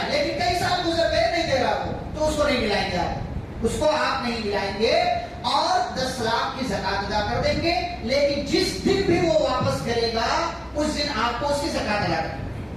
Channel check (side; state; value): both; identical; correlation 1.00